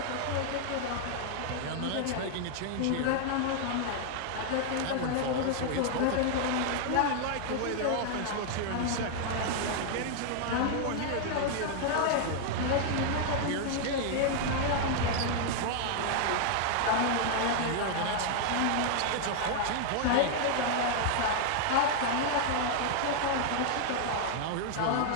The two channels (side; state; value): both; different; correlation 0.00